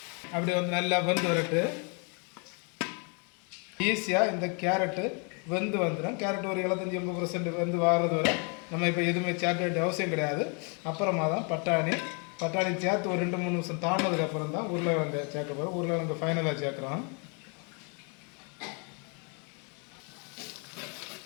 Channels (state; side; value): quieter; right; 36.0 dB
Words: அப்படி வந்து நல்லா வெந்து வரட்டு. ஈஸியாக இந்த கேரட்டு வெந்து வந்துடும். கேரட் ஒரு 75-80% வெந்து வாரது வரை நம்ம இப்போ எதுவுமே சேர்க்க வேண்டிய அவசியம் கிடையாது. அப்புறமா தான் பட்டாணி சேர்த்து ஒரு 2-3 நிமிஷம் தாண்டினதுக்கப்புறம் தான் உருளைக்கிழங்கு சேர்க்க போகிறோம். உருளைக்கிழங்கு ஃபைனலாக சேர்க்குறோம்.